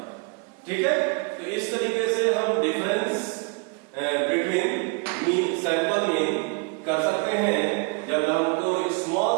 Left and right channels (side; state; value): left; quieter; 32.3 dB